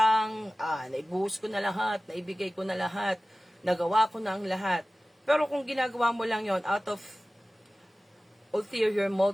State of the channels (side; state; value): both; normal; correlation 0.97